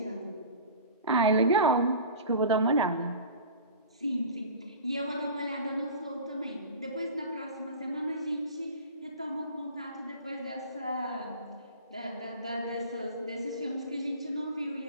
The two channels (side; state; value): both; inverted; correlation -0.37